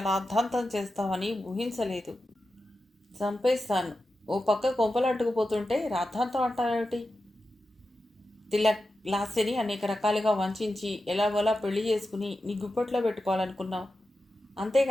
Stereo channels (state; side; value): normal; both; correlation 0.91